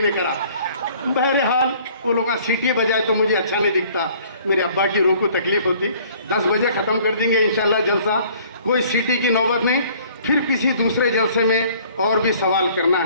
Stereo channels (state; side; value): inverted; both; correlation -0.55